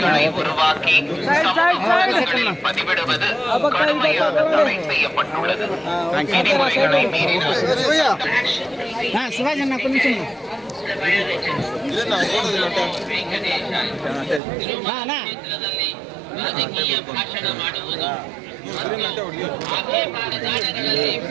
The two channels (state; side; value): drops out; left; at 14.4 s